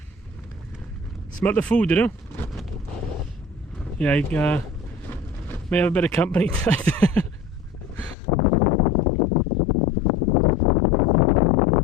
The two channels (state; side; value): drops out; right; at 8.2 s